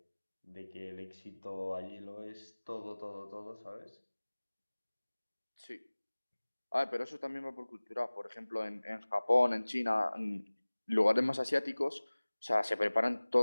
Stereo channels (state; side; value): inverted; both; correlation -1.00